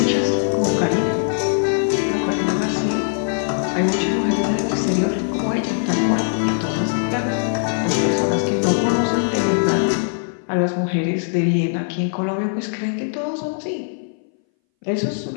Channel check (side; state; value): right; silent; 62 dB below the other